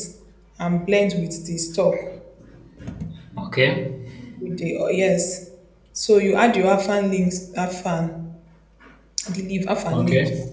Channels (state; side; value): identical; both; correlation 1.00